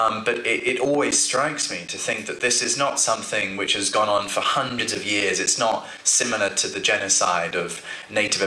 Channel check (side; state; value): both; identical; correlation 1.00